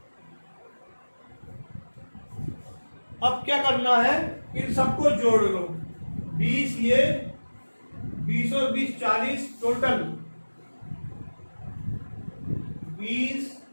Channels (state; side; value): inverted; both; correlation -1.00